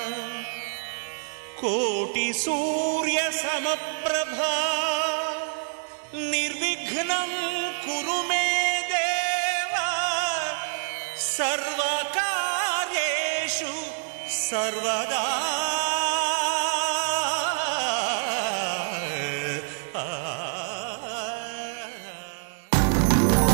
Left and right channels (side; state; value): left; silent; digital silence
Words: కోటి సూర్య సమప్రభా నిర్విఘ్నం కురు మే దేవ సర్వకార్యేషు సర్వదా.